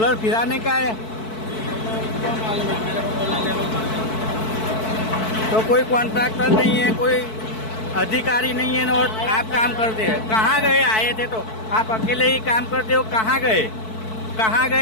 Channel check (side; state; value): right; late; 4.6 ms